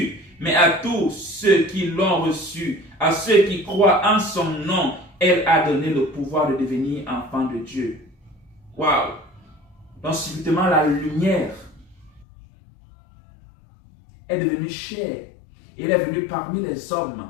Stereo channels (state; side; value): drops out; right; at 12.2 s